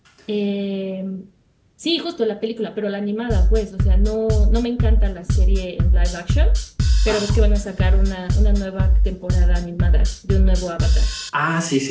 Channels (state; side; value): identical; both; correlation 1.00